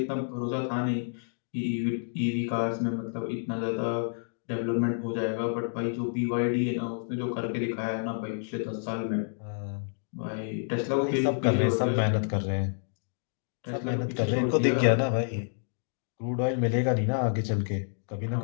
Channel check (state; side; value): silent; right; digital silence